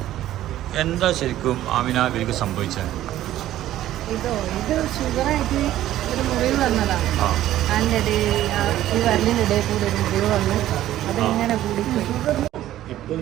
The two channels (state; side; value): quieter; left; 13.5 dB